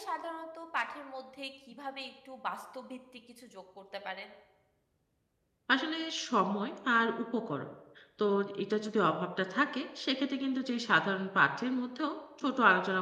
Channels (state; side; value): identical; both; correlation 1.00